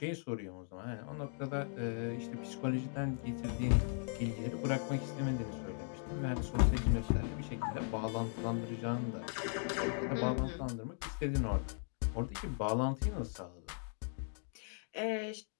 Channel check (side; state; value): right; silent; 52 dB below the other